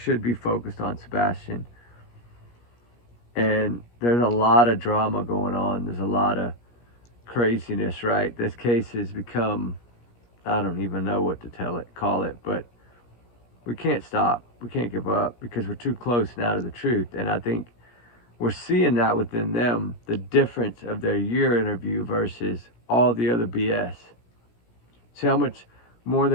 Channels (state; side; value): late; right; 17 ms